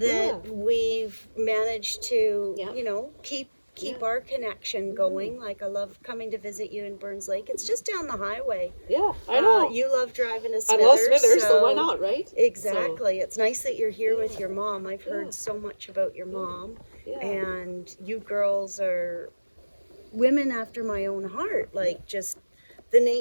that yeah. we've managed to, Yeah. you know, keep Yeah. our connection going. Like, I love coming to visit you in Burns Lake. It's just down the highway. Yeah, I know. You love driving to I Smithers. love Smithers, so why not, right? Exactly. It's nice that you're here with Yeah. your mom. I've heard Yeah. so much about your mom, Yeah. and you girls are women after my own heart. Like, just the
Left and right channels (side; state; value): both; inverted; correlation -1.00